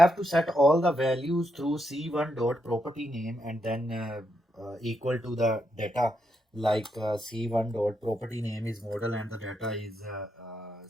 to set all the values through c1 dot property name and then equal to the data, like c1 dot property name is model and the data is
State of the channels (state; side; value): normal; both; correlation 0.81